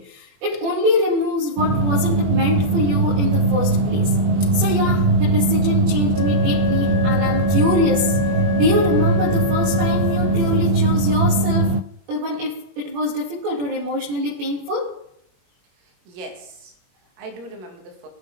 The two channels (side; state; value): left; late; 21 ms